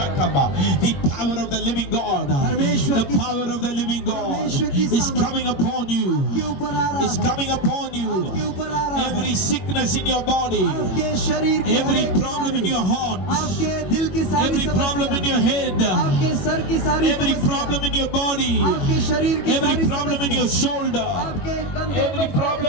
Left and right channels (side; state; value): right; late; 21 ms